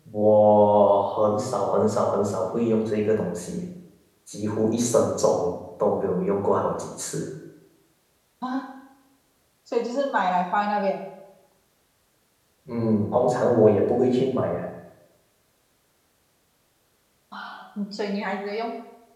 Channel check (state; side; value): identical; both; correlation 1.00